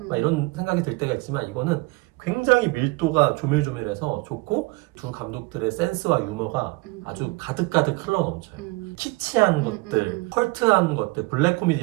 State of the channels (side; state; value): left; quieter; 24.0 dB